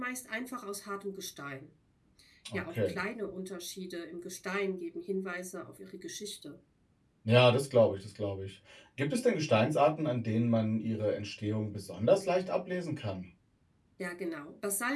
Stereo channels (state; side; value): identical; both; correlation 1.00